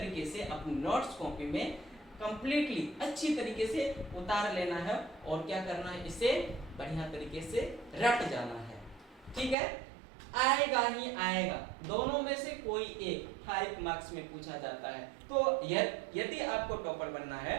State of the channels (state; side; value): drops out; left; at 9.6 s